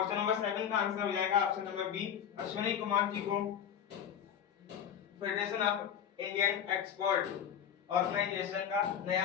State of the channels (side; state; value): right; quieter; 9.0 dB